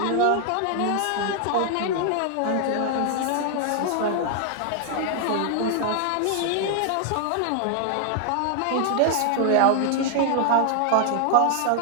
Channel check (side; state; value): both; different; correlation 0.00